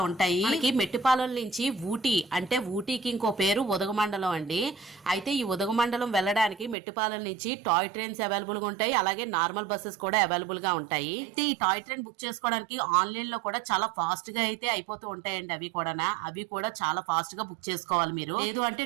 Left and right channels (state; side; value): drops out; left; at 6.8 s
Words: ఉంటాయి. మనకి మెట్టుపాలెం నుంచి ఊటీ, అంటే ఊటీకి ఇంకో పేరు ఉదగమండలం అండి. అయితే ఈ ఉదగమండలం వెళ్ళడానికి మెట్టుపాలెం నుంచి టాయ్ ట్రైన్స్ అవైలబుల్ గా ఉంటాయి, అలాగే నార్మల్ బస్సెస్ కూడా అవైలబుల్ గా ఉంటాయి. అయితే ఈ టాయ్ ట్రైన్ బుక్ చేసుకోవడానికి ఆన్లైన్ లో కూడా చాలా ఫాస్ట్ గా అయితే అయిపోతూ ఉంటాయండి. అవి కూడా చాలా ఫాస్ట్ గా బుక్ చేసుకోవాలి మీరు, లేదు అంటే